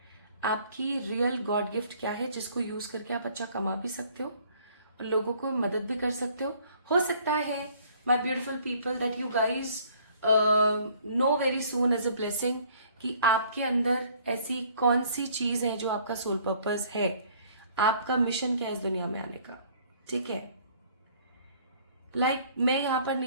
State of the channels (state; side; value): inverted; both; correlation -0.58